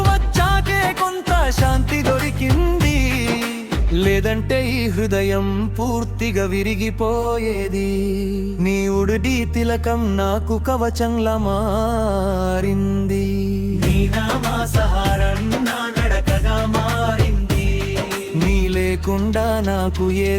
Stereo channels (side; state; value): both; identical; correlation 1.00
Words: వచ్చాకే కొంత శాంతి దొరికింది, లేదంటే ఈ హృదయం పూర్తిగా విరిగిపోయేది. నీ ఉడిడి తిలకం నాకు కవచంలా మారింది. నీ నామా సహారం నా నడకగా మారింది. నీ లేకుండా నాకు